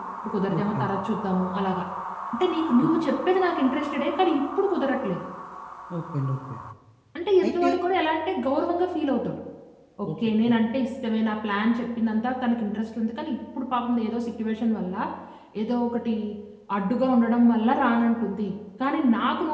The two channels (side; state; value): both; identical; correlation 1.00